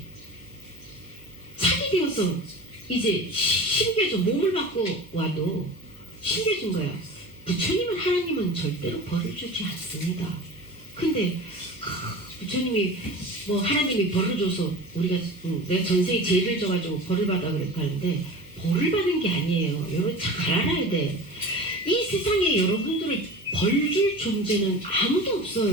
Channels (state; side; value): noise; right; hum, 24 dB below the sound